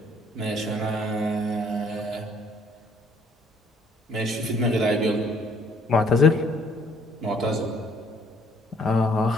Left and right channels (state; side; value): normal; both; correlation 0.62